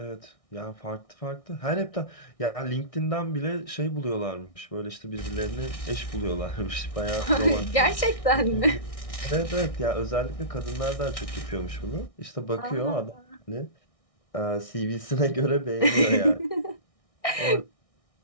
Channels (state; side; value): late; right; 1.6 ms